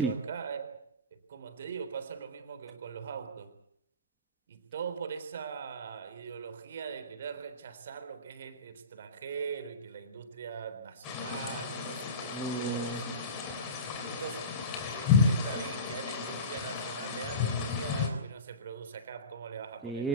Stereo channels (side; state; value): both; inverted; correlation -0.31